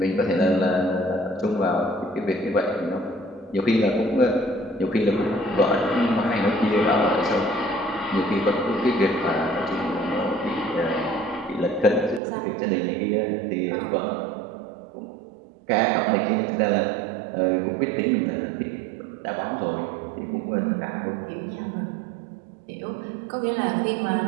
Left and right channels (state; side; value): drops out; left; at 12.2 s